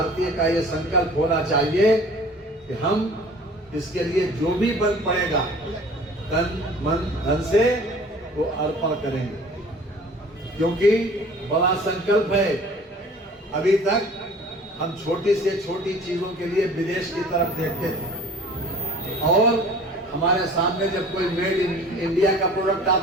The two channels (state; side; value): normal; both; correlation 0.47